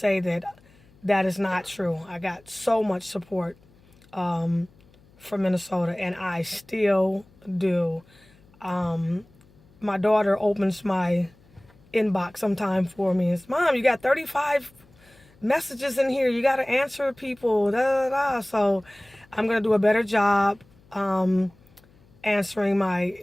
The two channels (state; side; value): noise; left; hum, 29 dB below the sound